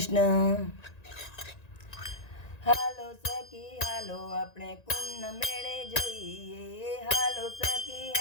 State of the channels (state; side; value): late; right; 1.9 ms